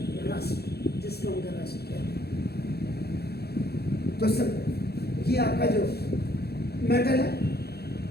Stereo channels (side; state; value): right; late; 0.46 ms